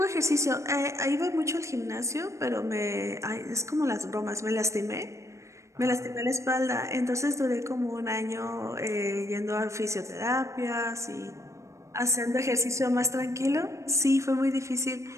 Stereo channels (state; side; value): late; left; 0.15 ms